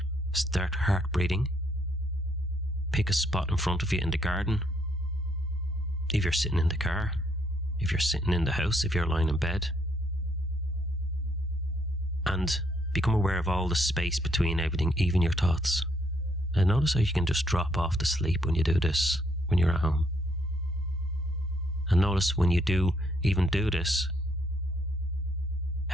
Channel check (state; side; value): normal; both; correlation 0.71